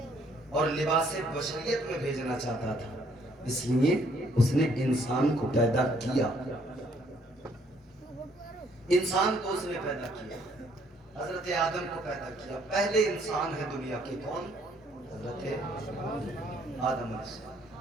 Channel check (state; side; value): normal; both; correlation 0.66